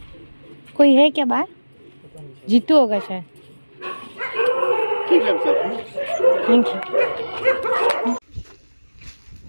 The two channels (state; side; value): inverted; both; correlation -1.00